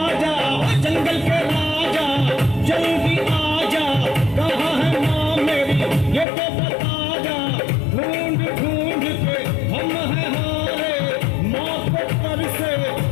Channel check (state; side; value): drops out; right; at 6.2 s